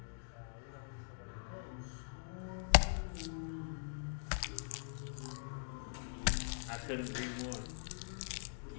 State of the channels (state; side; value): silent; right; digital silence